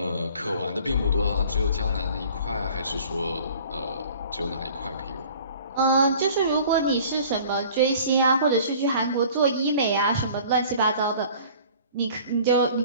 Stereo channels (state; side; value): inverted; both; correlation -0.49